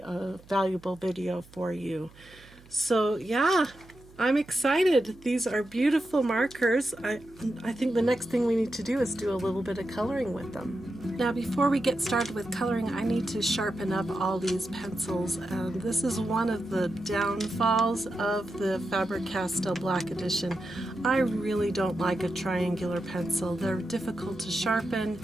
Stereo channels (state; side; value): noise; right; hum, 24 dB below the sound